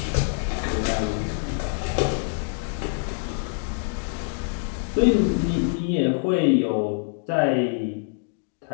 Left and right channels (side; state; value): right; silent; 62 dB below the other